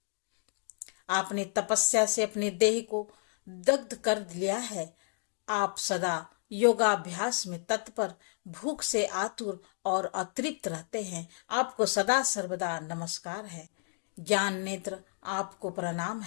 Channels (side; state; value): right; silent; 57 dB below the other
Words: आपने तपस्या से अपने देह को दग्ध कर लिया है। आप सदा योगाभ्यास में तत्पर, भूख से आतुर और अतृप्त रहते हैं, आपको सदा सर्वदा नमस्कार है। ज्ञान नेत्र, आपको प्रणाम